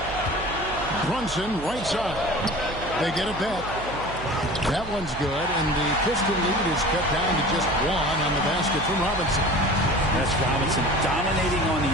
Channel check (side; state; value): right; noise; hum, 13 dB below the sound